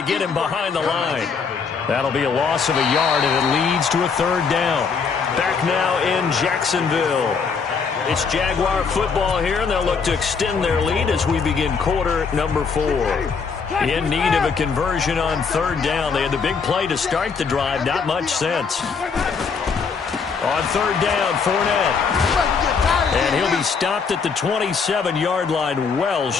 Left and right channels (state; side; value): quieter; right; 5.5 dB